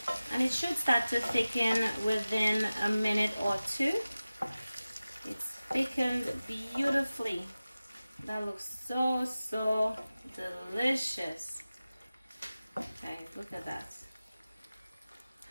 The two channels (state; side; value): inverted; both; correlation -0.96